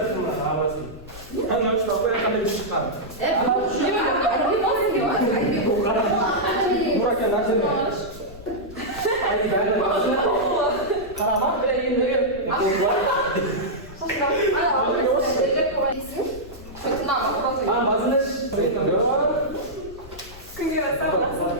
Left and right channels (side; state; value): left; noise; rumble, 17 dB below the sound